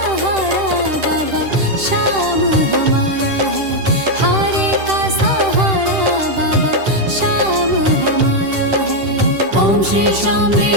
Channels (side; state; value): left; late; 10 ms